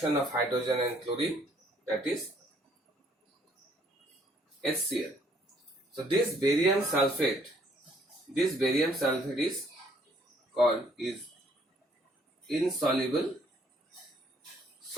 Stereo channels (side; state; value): both; normal; correlation 0.64